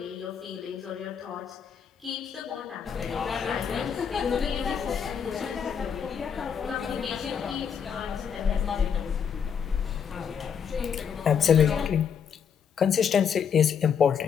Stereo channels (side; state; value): right; quieter; 7.3 dB